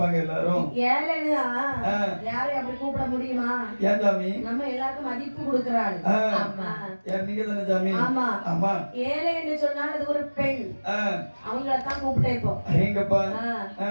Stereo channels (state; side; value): inverted; both; correlation -1.00